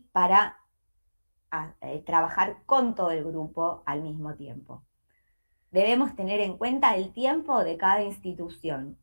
para trabajar con todo el grupo al mismo tiempo. Debemos tener en cuenta el tiempo de cada institución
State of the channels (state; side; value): inverted; both; correlation -1.00